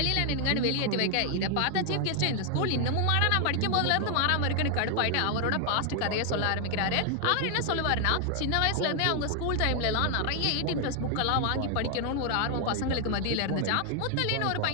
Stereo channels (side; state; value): both; different; correlation 0.00